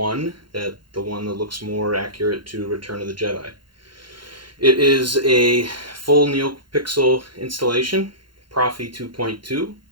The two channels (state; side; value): late; left; 0.72 ms